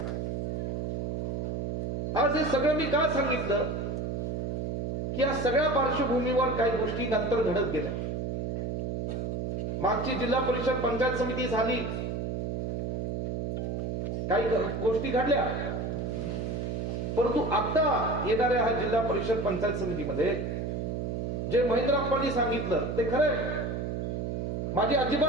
आज हे सगळं मी का सांगितलं की या सगळ्या पार्श्वभूमीवर काही गोष्टी नंतर घडत गेल्या. मागची जिल्हा परिषद पंचायत समिती झाली, काही गोष्टी घडल्या, परंतु आता येणाऱ्या हा जिल्हा परिषद पंचायत समितीमध्ये जे महेंद्रप्पांनी सांगितलं ते खरंय. माझी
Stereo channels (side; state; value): right; noise; hum, 2 dB below the sound